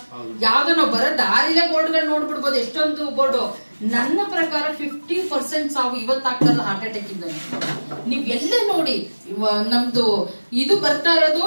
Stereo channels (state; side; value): inverted; both; correlation -1.00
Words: ಯಾವ್ದೋ ನಾವು ಬರೋ ದಾರಿಲೇ ಬೋರ್ಡ್ಗಳು ನೋಡ್ಬಿಡ್ಬೋದು, ಎಷ್ಟೊಂದು ಬೋರ್ಡು. ನನ್ನ ಪ್ರಕಾರ 50% ಸಾವು ಇವತ್ತಾಗ್ತಲ್ಲ ಹಾರ್ಟ್ ಅಟ್ಯಾಕ್ ಇಂದ. ನೀವ್ ಎಲ್ಲೇ ನೋಡಿ ನಮ್ದು ಇದು ಬರ್ತಾ ಇರೋದು.